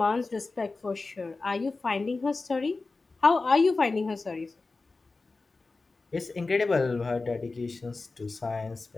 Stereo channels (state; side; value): quieter; right; 3.7 dB